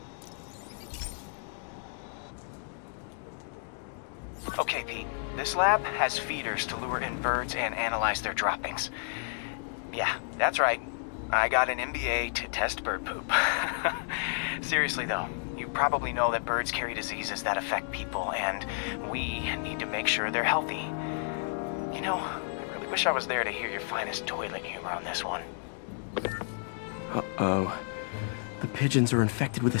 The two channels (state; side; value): silent; right; digital silence